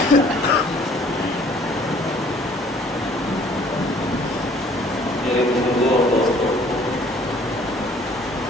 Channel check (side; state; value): both; normal; correlation 0.56